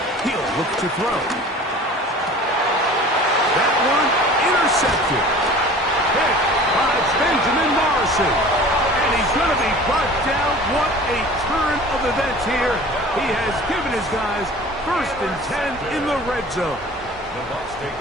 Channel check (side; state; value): both; normal; correlation 0.43